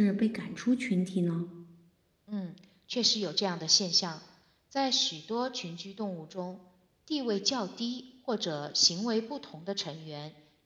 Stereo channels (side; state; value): both; identical; correlation 1.00